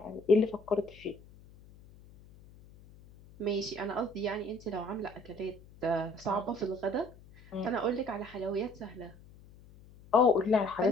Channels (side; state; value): left; noise; hum, 22 dB below the sound